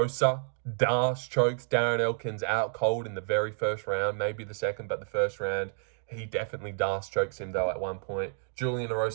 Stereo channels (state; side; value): silent; left; digital silence